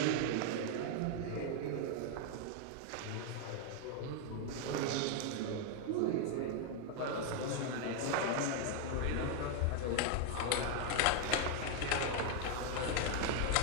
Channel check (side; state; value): both; different; correlation 0.00